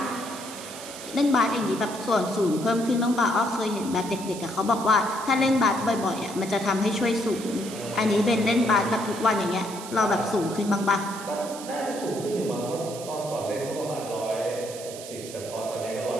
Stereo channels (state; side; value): noise; right; hiss, 13 dB below the sound